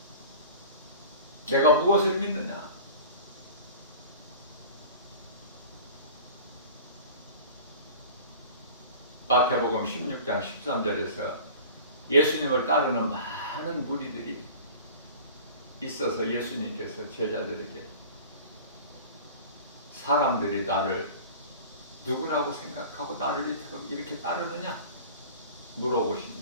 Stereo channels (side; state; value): both; inverted; correlation -0.39